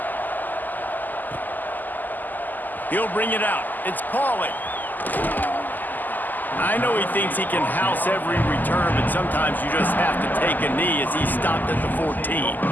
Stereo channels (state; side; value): late; right; 0.085 ms